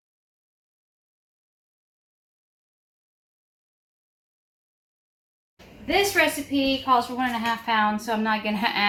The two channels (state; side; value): identical; both; correlation 1.00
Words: This recipe calls for 1.5 pounds, so I'm not gonna